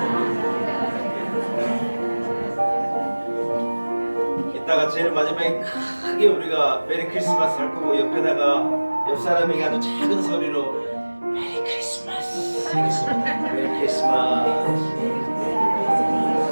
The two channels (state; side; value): inverted; both; correlation -1.00